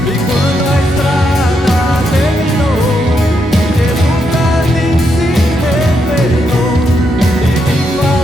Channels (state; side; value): normal; both; correlation 0.80